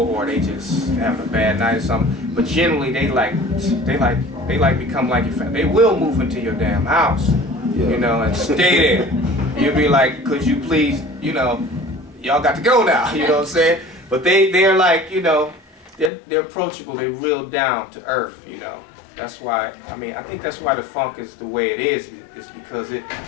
or they just having a bad night or something. But generally they become like your family. They will move into your damn house, you know, and stay there. You'll be like, could you please, you know, y'all got to go now, you know what I'm saying? But they're like, you know, they're approachable, they're real down to earth, you know. That's why, I mean, I think that's why the funk is the way it is because it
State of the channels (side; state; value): right; drops out; at 16.1 s